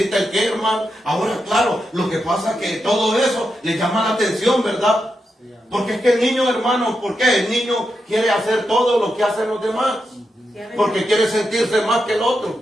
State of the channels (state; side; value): normal; both; correlation 0.86